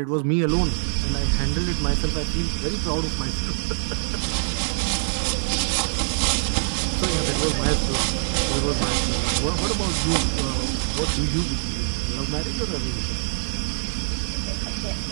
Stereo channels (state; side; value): silent; left; digital silence